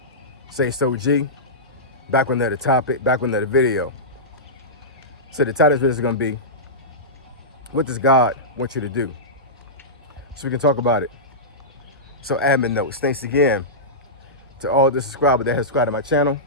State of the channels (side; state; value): both; normal; correlation -0.15